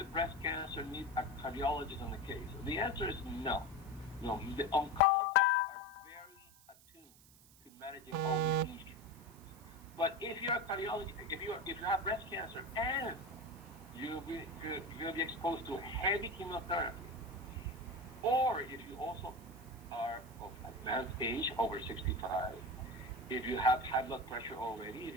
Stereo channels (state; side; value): noise; right; hiss, 24 dB below the sound